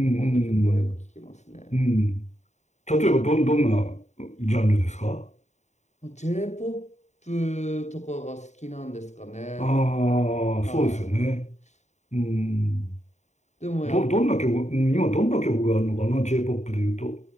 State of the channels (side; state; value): right; late; 0.34 ms